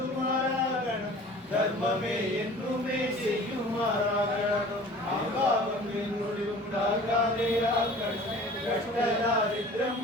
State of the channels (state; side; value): normal; both; correlation 0.45